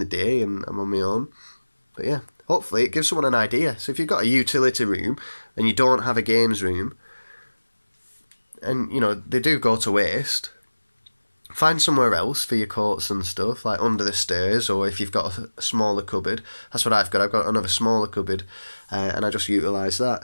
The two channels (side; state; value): both; inverted; correlation -1.00